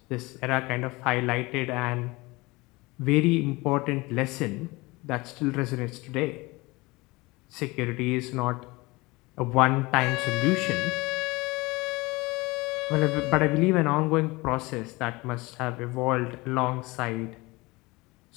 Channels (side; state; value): right; quieter; 23.0 dB